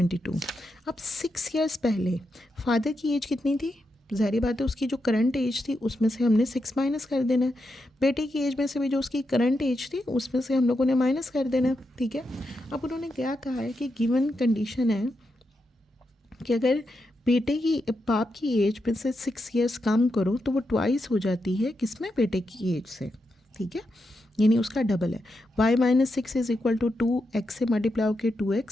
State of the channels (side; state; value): both; normal; correlation 0.85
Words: अब 6 ईयर्स पहले फादर की एज कितनी थी, ज़ाहिर बात है उसकी जो करंट एज थी उसमें से हमने 6 माइनस कर देना है। बेटे की एज में से भी जो उसकी करंट एज थी उसमें से हम लोगों ने माइनस कर देना है, ठीक है। अब उन्होंने क्या कहा है कि गिवन कंडीशन है कि अगर बेटे की, बाप की एज में से 6 ईयर्स कम करो तो वो ट्वाइस हो जाती है, किसमें, बेटे की एज से, ठीक है, यानी उसका डबल है। y minus six is equal to 2x से मल्टीप्लाई होकर